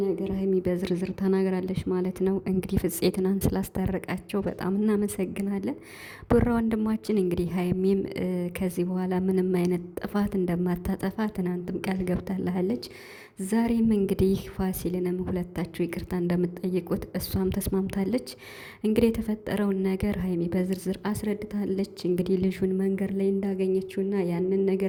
ነገር ሀይሚ በዝርዝር ተናግራለች ማለት ነው። እንግዲህ ፍፄ ትናንት ስላስታረቃቸው በጣም እናመሰግናለን። ቡራ ወንድማችን እንግዲህ ሀይሚም ከዚህ በኋላ ምንም አይነት ጥፋት እንደማታጠፋ ትናንትም ቃል ገብታለች። ዛሬም እንግዲህ ፋሲልንም ሁለታችሁ ይቅርታ እንደምትጠይቁት እሷም ተስማምታለች። እንግዲህ የተፈጠረውን ነገር ሀይሚ በዝርዝር አስረድታለች። እንግዲህ ልጁን መንገድ ላይ እንዳገኘችውና ያንን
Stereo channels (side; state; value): both; identical; correlation 1.00